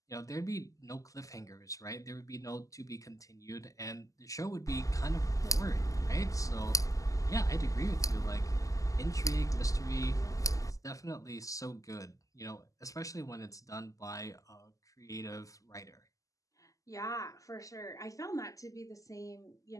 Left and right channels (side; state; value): right; late; 0.16 ms